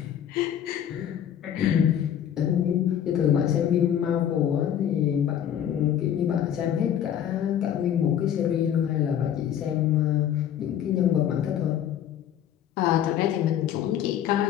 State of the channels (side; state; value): right; quieter; 9.9 dB